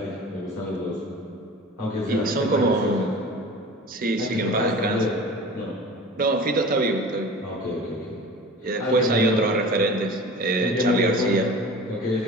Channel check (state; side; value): normal; both; correlation 0.38